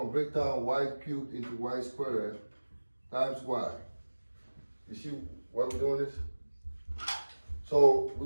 to break down y cubed into y squared times y. You see why we're doing this? So we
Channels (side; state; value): both; inverted; correlation -1.00